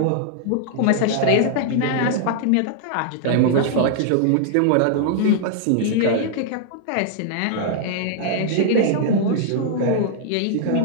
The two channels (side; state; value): both; different; correlation -0.01